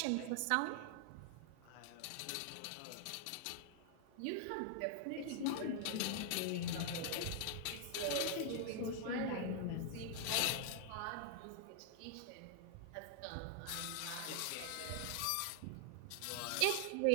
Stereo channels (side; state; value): both; different; correlation 0.00